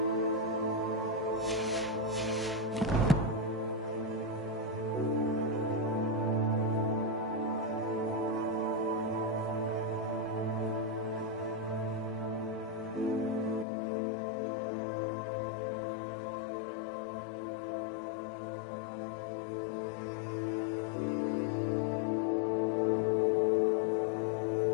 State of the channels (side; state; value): right; drops out; at 13.7 s